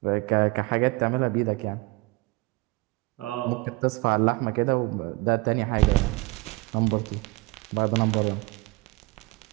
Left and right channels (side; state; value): left; quieter; 23.3 dB